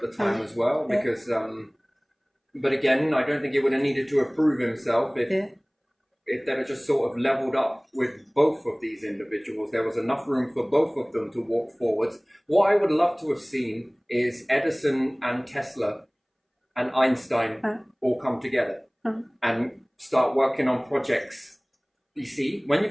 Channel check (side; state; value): both; identical; correlation 1.00